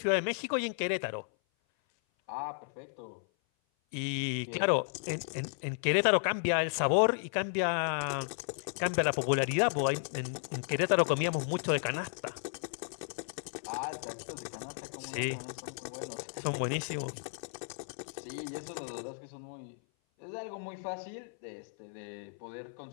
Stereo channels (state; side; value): silent; right; 55 dB below the other